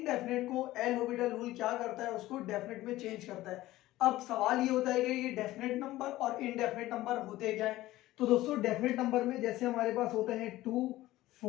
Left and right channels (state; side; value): quieter; right; 16.4 dB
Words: को एल हॉपिटल रूल क्या करता है, उसको डेफिनेट में चेंज करता है। अब सवाल ये होता है कि ये डेफिनेट नंबर और इनडेफिनेट नंबर होते क्या है। तो दोस्तों, डेफिनेट नंबर में जैसे हमारे पास होते हैं 2,